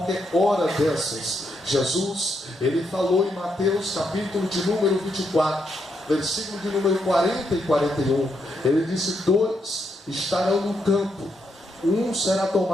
hora dessas. Jesus, ele falou em Mateus capítulo de número 24, versículo de número 40 e 41. Ele disse: 2 estarão no campo, um será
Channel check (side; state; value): both; normal; correlation 0.79